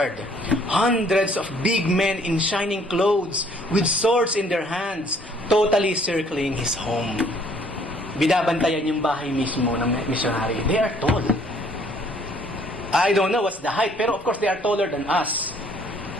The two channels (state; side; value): normal; both; correlation 0.61